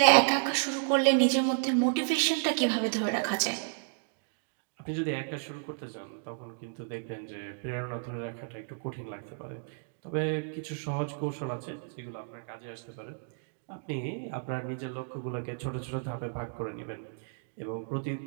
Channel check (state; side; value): silent; left; digital silence